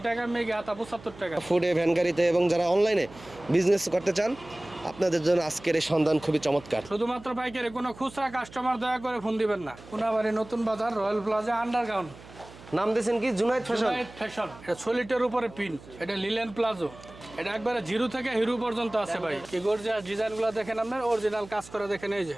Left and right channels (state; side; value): noise; right; hum, 19 dB below the sound